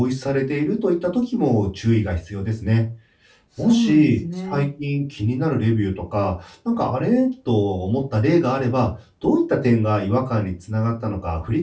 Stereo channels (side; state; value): both; identical; correlation 1.00